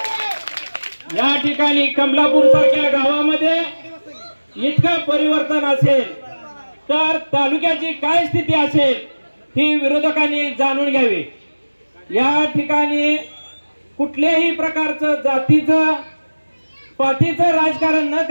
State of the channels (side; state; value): both; inverted; correlation -1.00